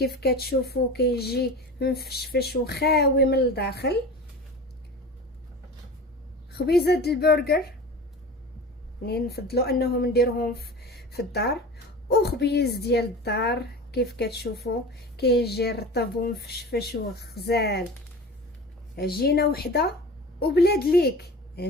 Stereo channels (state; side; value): normal; both; correlation 0.34